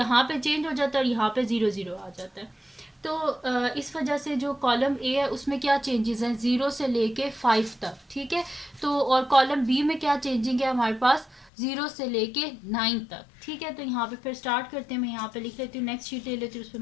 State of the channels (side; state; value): right; drops out; at 11.5 s